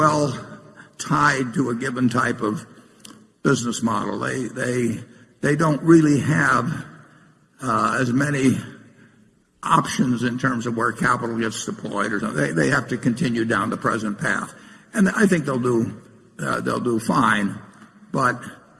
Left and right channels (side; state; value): both; identical; correlation 1.00